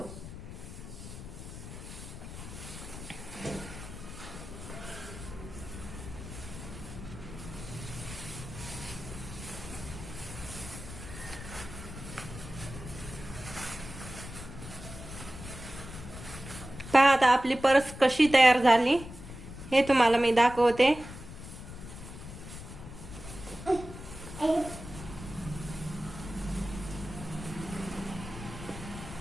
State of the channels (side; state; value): left; noise; rumble, 12 dB below the sound